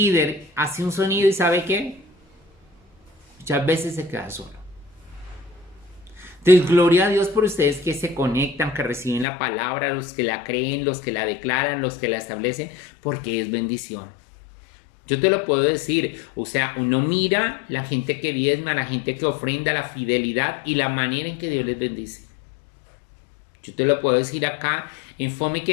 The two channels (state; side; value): drops out; right; at 9.2 s